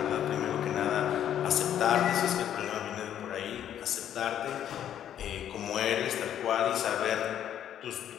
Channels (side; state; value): right; quieter; 10.3 dB